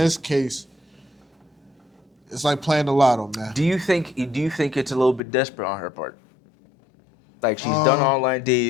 case, it's like playing the lotto, man. Do you think it's a little bit desperate on her part? Like she's done online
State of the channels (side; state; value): right; drops out; at 5.2 s